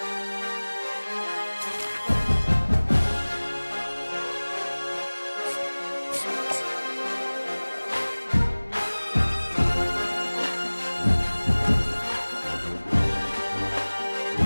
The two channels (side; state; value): both; inverted; correlation -1.00